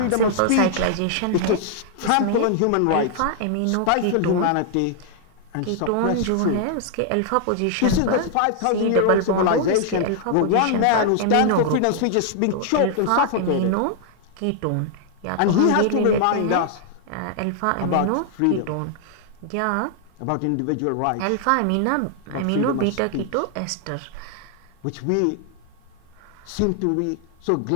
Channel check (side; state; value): both; different; correlation 0.00